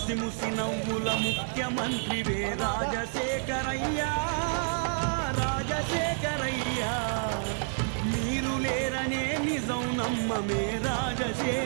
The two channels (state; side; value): silent; left; 58 dB below the other